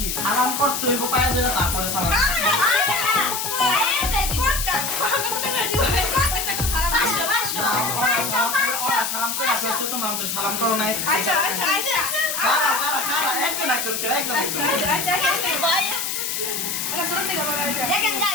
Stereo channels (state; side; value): noise; left; hiss, 2 dB below the sound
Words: সালাম করতে হইব পায়ে ধরে, তারপরে সালাম সালাম করে আসতে তোমরা আমাদের সালাম করো নাই। দেখেন